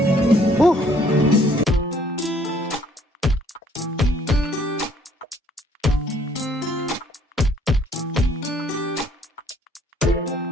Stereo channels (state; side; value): normal; both; correlation 0.61